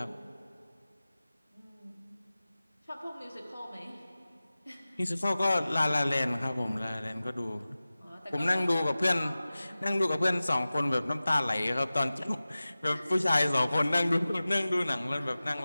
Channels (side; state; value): both; inverted; correlation -0.97